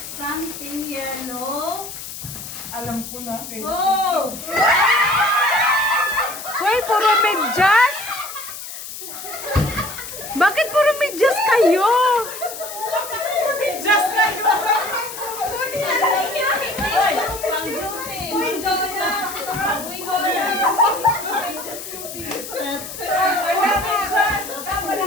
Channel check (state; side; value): noise; left; hiss, 10 dB below the sound